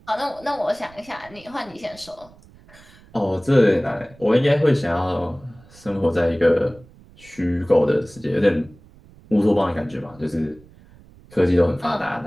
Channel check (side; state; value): right; noise; rumble, 24 dB below the sound